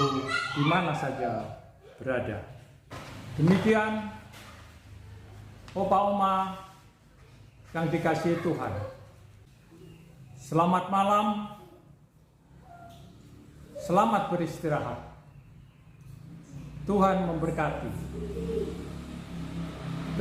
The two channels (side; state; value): both; identical; correlation 1.00